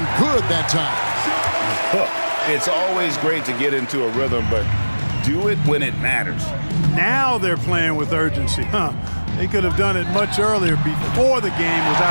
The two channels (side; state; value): both; inverted; correlation -1.00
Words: good that time. It's always great to get into a rhythm, but do it when it matters. Now they're playing with urgency. They could have done it much earlier before the game was